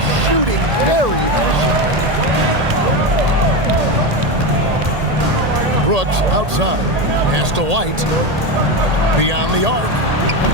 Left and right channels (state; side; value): late; left; 1.8 ms